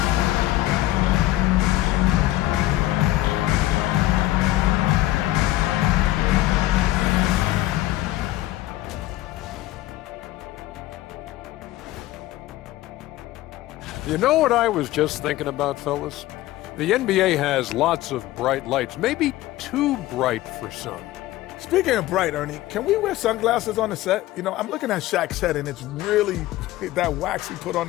You know what I was just thinking about, fellas? The NBA has lots of bright lights, maybe too bright for some. Speaking of bright, Ernie, can we wear sunglasses on the set? You know, I'm looking at Shaq's head, and it's really that wax he put on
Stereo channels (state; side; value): quieter; right; 16.0 dB